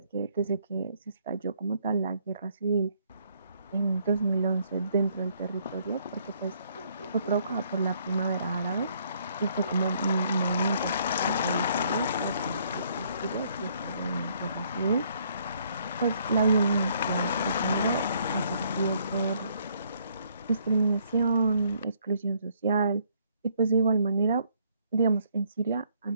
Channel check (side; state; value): both; inverted; correlation -0.67